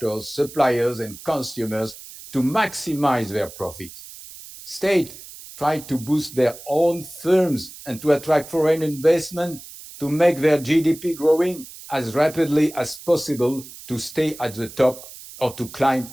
suppliers, and consumers to maximize their profits. States try to boost their own firms and to attract foreign investment to make their GDP growing as rapidly as possible to stay at the top or to climb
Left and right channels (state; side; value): noise; right; hiss, 16 dB below the sound